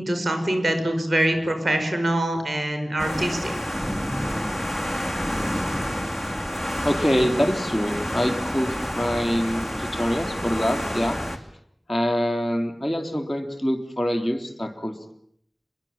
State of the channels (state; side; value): normal; both; correlation 0.97